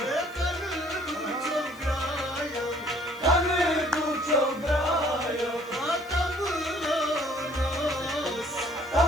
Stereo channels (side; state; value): left; noise; hiss, 25 dB below the sound